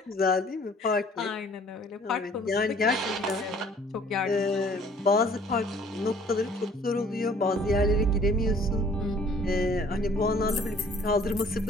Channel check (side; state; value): both; normal; correlation 0.55